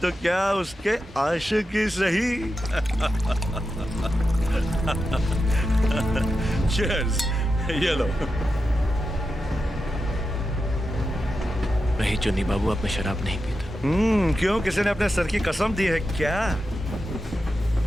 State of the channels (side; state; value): both; normal; correlation 0.89